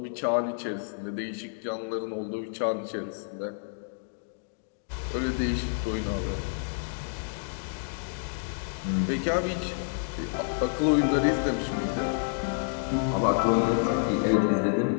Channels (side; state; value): right; silent; digital silence